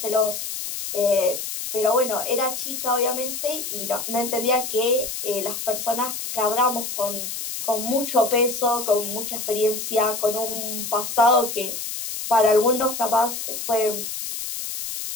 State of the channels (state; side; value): noise; left; hiss, 6 dB below the sound